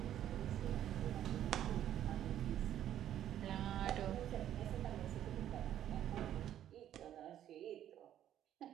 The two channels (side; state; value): left; quieter; 11.2 dB